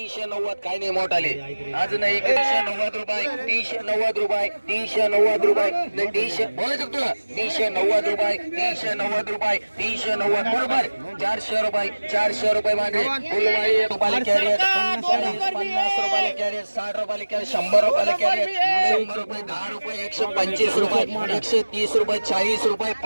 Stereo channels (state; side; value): inverted; both; correlation -1.00